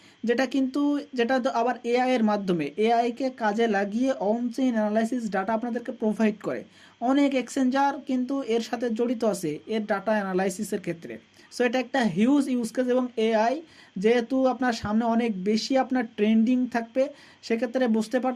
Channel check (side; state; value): both; identical; correlation 1.00